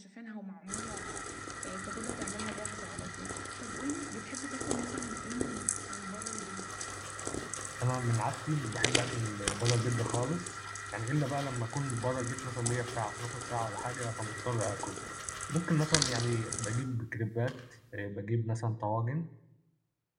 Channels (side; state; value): both; identical; correlation 1.00